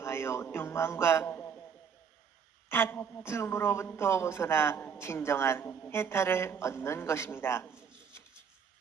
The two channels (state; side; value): quieter; left; 6.9 dB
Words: 욕망과 다툼으로부터 벗어나 진정한 해탈을 얻는 것입니다.